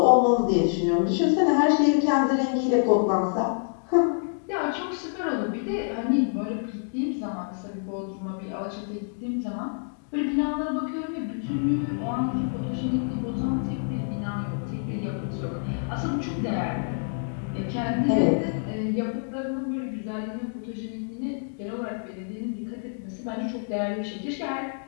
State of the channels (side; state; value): right; silent; digital silence